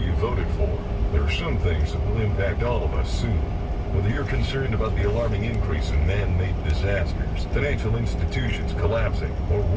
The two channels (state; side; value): identical; both; correlation 1.00